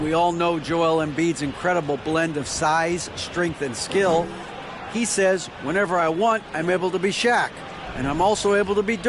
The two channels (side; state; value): both; identical; correlation 1.00